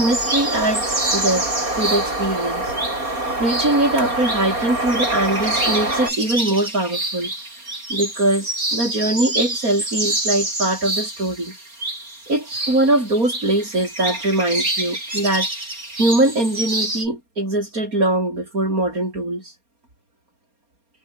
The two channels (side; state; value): left; late; 4.3 ms